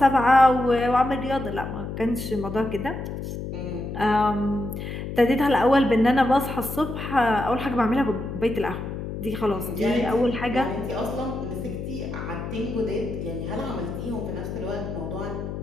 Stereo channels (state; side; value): noise; left; hum, 6 dB below the sound